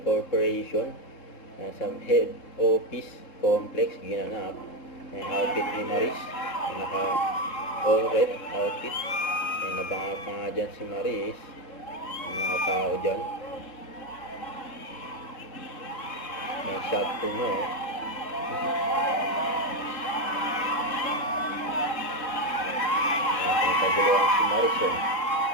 Corporation sa head office complex ginanap. Yung outfit ni Maris, yung naka all red outfit. Yung nabanga pa nga dyan si Maris, yung mga tao dyan. Yung shot po no. Paguluhan si Maris yun.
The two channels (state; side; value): late; right; 3.7 ms